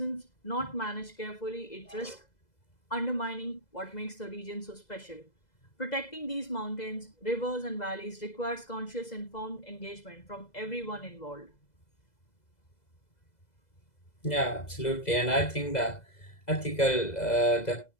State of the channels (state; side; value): late; right; 2.0 ms